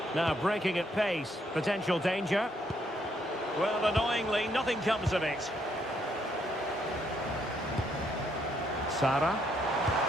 Now breaking at pace. Potential danger. Well, annoyingly, nothing comes of it. Sara.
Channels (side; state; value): both; normal; correlation 0.72